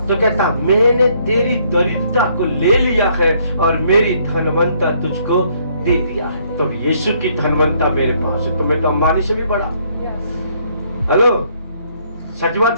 तो कहता मैंने तेरी दरिद्रता को ले लिया है और मेरी धनवंता तुझको दे दिया है। तो यीशु की धनवंता मेरे पास है, तो मैं तो अंबानी से भी बड़ा। हेलो, सच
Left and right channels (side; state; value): both; inverted; correlation -0.67